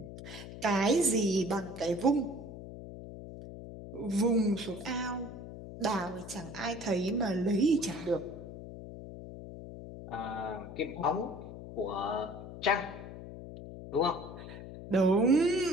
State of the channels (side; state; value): left; noise; hum, 12 dB below the sound